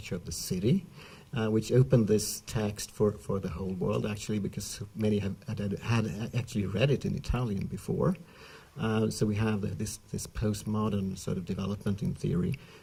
of the City, which opened this text for the whole world, actually, because many had actually read it in Italian before. So we have this postmodern sort of development in theory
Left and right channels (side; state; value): both; identical; correlation 1.00